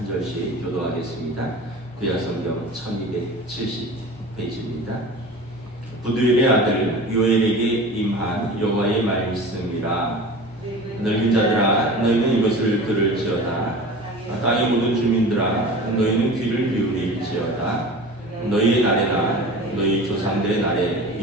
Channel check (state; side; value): normal; both; correlation 0.37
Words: 절씩 교도하겠습니다. 구약 성경 1270 페이지입니다. 부두엘의 아들 요엘에게 임한 여호와의 말씀이라. 늙은 자들아 너희는 이것을 들을지어다. 땅의 모든 주민들아 너희는 귀를 기울일지어다. 너희의 날에나 너희 조상들의 날에